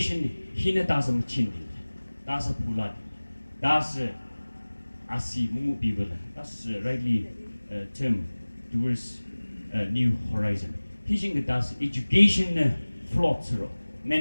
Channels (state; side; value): inverted; both; correlation -1.00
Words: Hinatasam Chindi, that's a Pula, that's Asi Mumu people, that's rightly term towards a new horizon. Teaching that's education floats,